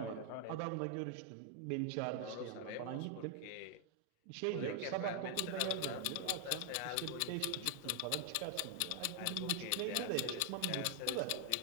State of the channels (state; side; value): different; both; correlation 0.00